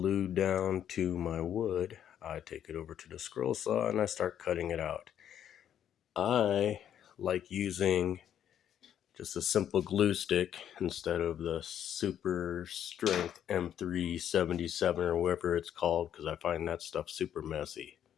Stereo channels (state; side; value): quieter; right; 9.9 dB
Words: down to my wood, I take it over to the scroll saw and I start cutting it out. I like using just a simple glue stick instead of the super strength M377 or whatever it's called, because I find that stuff super messy.